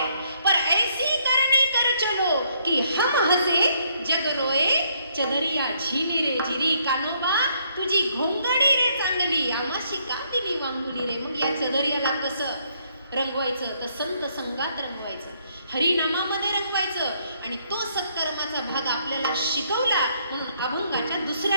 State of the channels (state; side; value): inverted; both; correlation -0.70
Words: पर ऐसी करनी कर चलो कि हम हसे जग रोए. चदरिया झिनी रे झिरी, कानोबा तुझी घोंगडी रे चांगली, आमाशी कांदिली वांगुली रे. मग या चदरियाला कसं रंगवायचं? तर संत संगात रंगवायचं, हरिनामामध्ये रंगवायचं. आणि तो सत्कर्माचा भाग आपल्याला शिकवला म्हणून अभंगाच्या